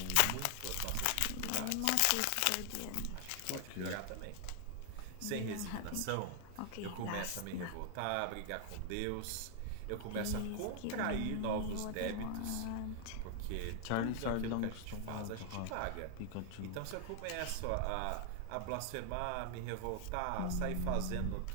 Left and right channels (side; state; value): both; different; correlation 0.00